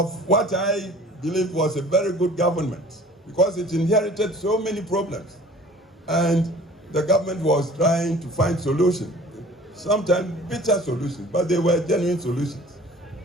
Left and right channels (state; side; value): normal; both; correlation 0.47